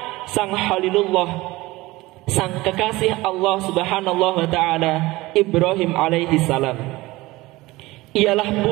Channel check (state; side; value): quieter; left; 19.9 dB